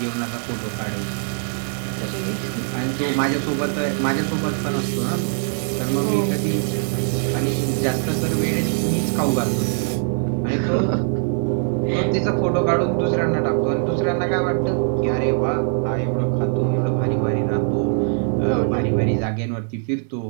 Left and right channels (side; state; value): left; silent; 58 dB below the other